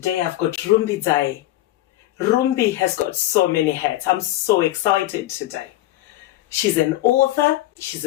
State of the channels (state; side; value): quieter; right; 15.6 dB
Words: Today I've got Rumbidzai. Rumbi has got so many hats. I'm so excited today. She's an author, she's